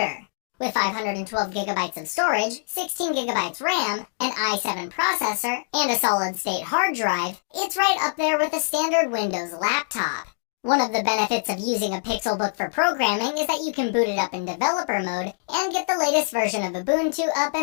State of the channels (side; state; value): right; silent; digital silence